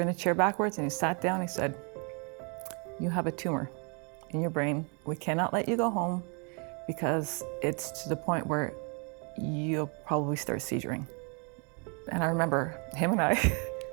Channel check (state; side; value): quieter; left; 36.3 dB